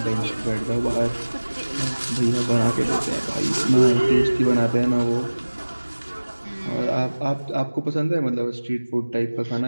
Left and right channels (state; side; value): inverted; both; correlation -1.00